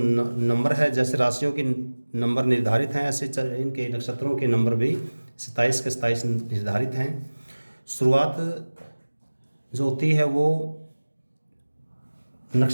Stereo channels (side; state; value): both; inverted; correlation -1.00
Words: है, जैसे राशियों की नंबर निर्धारित हैं ऐसे इनके नक्षत्रों के नंबर भी 27 के 27 निर्धारित हैं। शुरुआत जो होती है वो